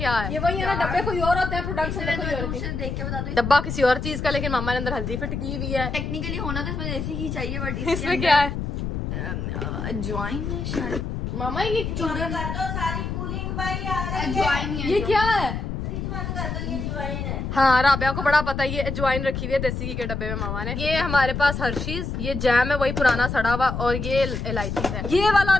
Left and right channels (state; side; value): noise; left; rumble, 4 dB below the sound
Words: है? ये वही है ना, डब्बे कोई और होते हैं, प्रोडक्ट्स देख के बता दो। डब्बा किसी और चीज का, लेकिन मामा ने अंदर हल्दी फिट की हुई है। टेक्निकली होना तो इसमें देसी घी चाहिए, बट इसमें क्या है? अजवाइन है शायद। मामा ये चूरन कर दो, सारी कूलिंग भाई आ रही है। अजवाइन ही है। ये क्या है? फ्रिज बंद कर दो, ये अजवाइन है। हाँ, राबिया को बड़ा पता है। ये अजवाइन रखी हुई है देसी घी के डब्बे में मामा ने। ये हमारे पास हर्शीज, ये जैम है वही पुराना सड़ा हुआ, और ये इलायची है। ये वाला